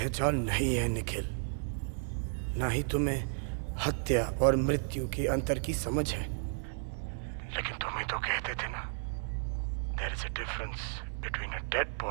नहीं है निखिल, ना ही तुम्हें हत्या और मृत्यु के अंतर की समझ है। लेकिन तुम ही तो कहते थे ना, there is a difference between a dead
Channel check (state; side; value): silent; left; 56 dB below the other